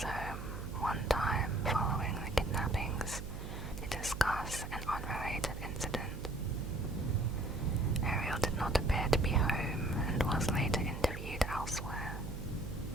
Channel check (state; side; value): noise; right; hum, 8 dB below the sound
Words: home one time following the kidnappings to discuss an unrelated incident. Ariel did not appear to be home and was later interviewed elsewhere.